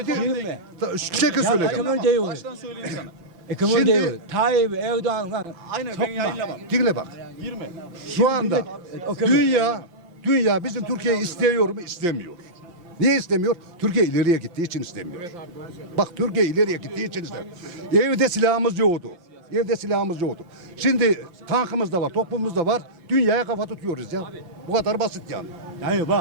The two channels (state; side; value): late; left; 5.9 ms